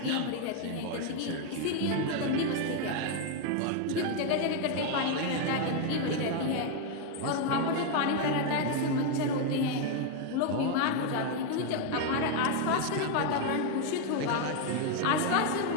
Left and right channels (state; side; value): different; both; correlation 0.01